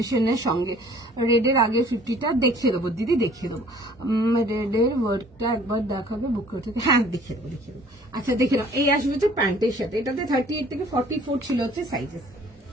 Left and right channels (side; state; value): both; normal; correlation 0.54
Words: সঙ্গে রেডের আগে 50টা দেখিয়ে দেবো দিদি, দেখিয়ে দেবো। রেডের ওয়ার্কটা একবার দেখাবে বুক করতে, হ্যাঁ দেখিয়ে দেবো, দেখিয়ে দেবো। আচ্ছা দেখে নাও, এই আসবে হচ্ছে প্যান্টের সাথে, এটাতে 38 থেকে 44 ছিল হচ্ছে সাইজেস।